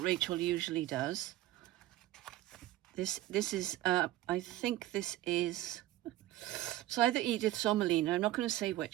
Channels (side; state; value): left; quieter; 15.0 dB